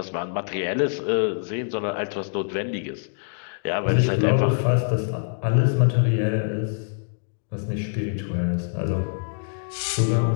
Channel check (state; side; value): silent; right; digital silence